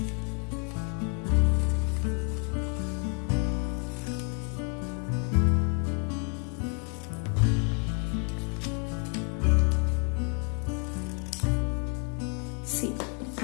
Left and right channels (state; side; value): quieter; right; 39.0 dB